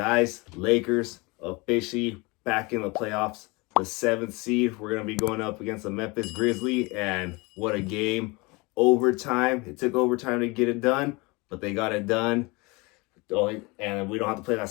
Lakers officially back in the playoffs. The seventh seed. We're going to be going up against the Memphis Grizzlies. And what a game. Overtime. It took overtime to get it done, but they got it done. And we don't have to play that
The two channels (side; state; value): right; quieter; 25.8 dB